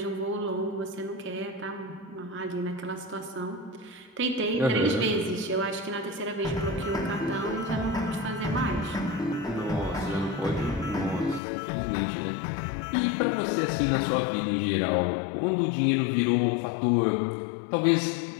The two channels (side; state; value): right; drops out; at 11.4 s